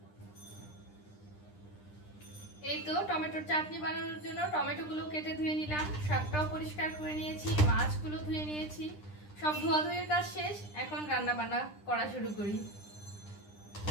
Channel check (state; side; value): late; right; 9.9 ms